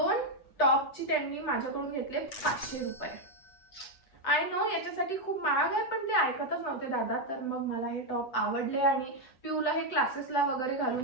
टॉपची त्यांनी माझ्याकडून घेतले 500 रुपये. आय नो याच्यासाठी खूप महाग आहे, पण ते ऐकतच नव्हते दादा. तर मग मला हे टॉप आवडले आणि पिऊला हे क्लासेसला वगैरे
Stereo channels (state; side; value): late; right; 7.9 ms